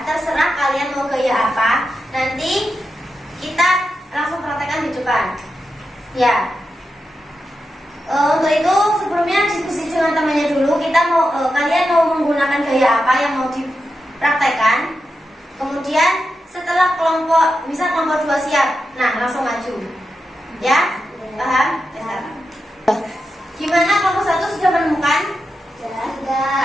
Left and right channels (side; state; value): both; normal; correlation 0.89